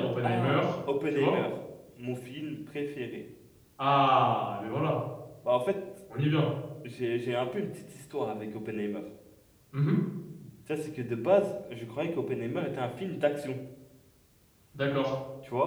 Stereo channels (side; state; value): both; identical; correlation 1.00